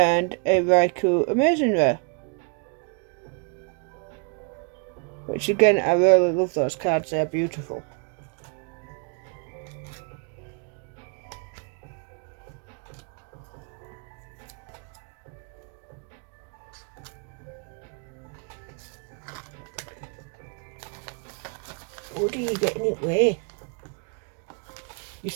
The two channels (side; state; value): left; quieter; 35.8 dB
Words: a Raikou Amazing Rare. Which again, I really love those cards, they're beautiful. What are you getting it with? You're